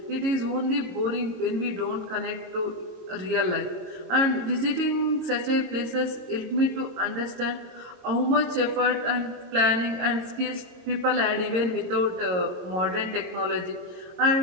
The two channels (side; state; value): left; late; 22 ms